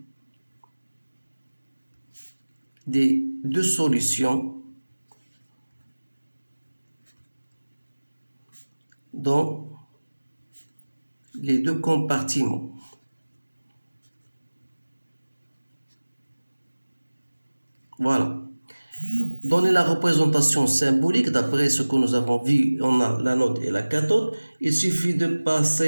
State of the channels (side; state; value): both; inverted; correlation -1.00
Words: des deux solutions dans les deux compartiments. Voilà. Donner la représentation symbolique, d'après ce que nous avons vu, on a l'anode et la cathode. Il suffit de